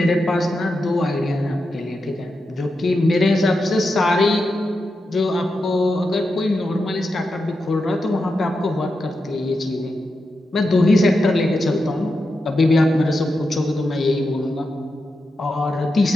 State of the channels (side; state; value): both; normal; correlation 0.88